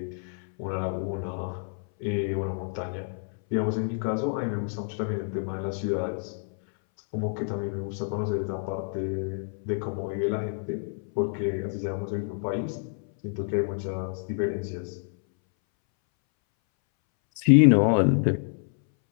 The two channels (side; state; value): right; silent; 59 dB below the other